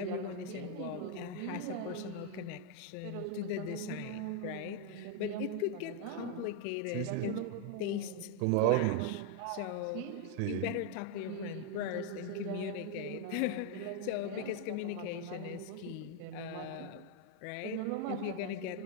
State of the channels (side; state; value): both; different; correlation 0.01